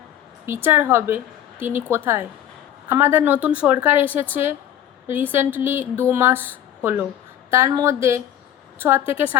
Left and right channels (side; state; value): right; quieter; 11.0 dB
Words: বিচার হবে, তিনি কোথায়? আমাদের নতুন সরকার এসেছে রিসেন্টলি 2 মাস হলো, তার মধ্যে 6 থেকে